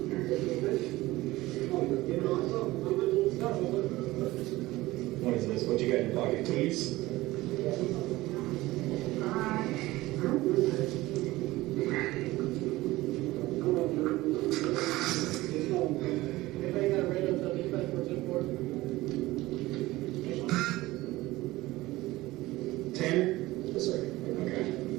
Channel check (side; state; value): left; quieter; 18.5 dB